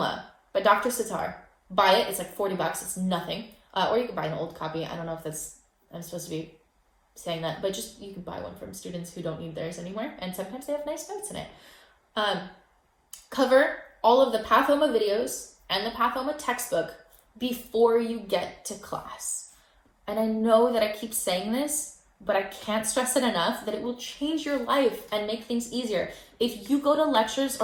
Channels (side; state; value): both; identical; correlation 1.00